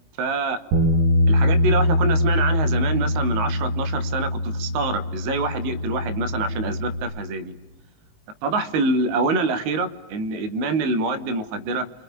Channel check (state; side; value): late; left; 19 ms